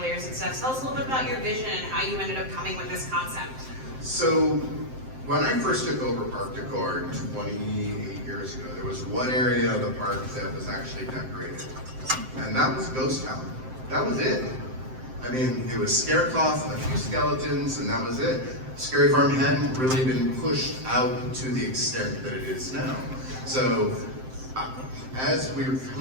and stuff. Tell us a little bit about your vision and how you ended up coming with this concept. So, when I first took over park decor 28 years ago, there was one area of the park that was actually decorated, and that was Ghost Town. That was it. I mean, it was Scarecloth and a few skeletons, and that was it. Scary Farm hadn't really been pushed out to the extent that it is now. So, as we were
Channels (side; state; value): left; late; 7.7 ms